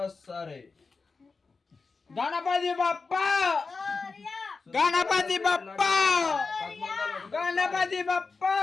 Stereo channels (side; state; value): right; quieter; 4.4 dB